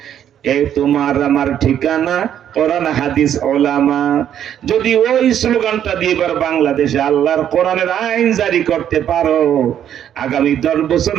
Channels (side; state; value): left; quieter; 10.0 dB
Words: এ তোমার আমার ঠিকানা, কোরআন হাদিস উলামা। যদি ওই স্লোগানটা দিয়ে এবার বাংলাদেশে আল্লাহর কোরআনের আইন জারি করতে পারো, আগামী 10